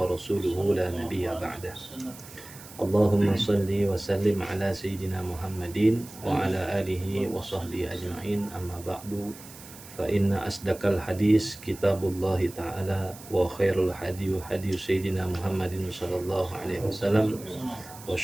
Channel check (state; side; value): noise; right; hiss, 17 dB below the sound